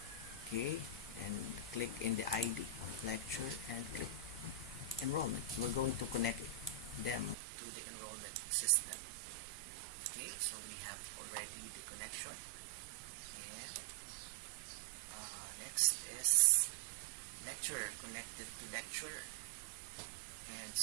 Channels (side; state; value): left; drops out; at 7.4 s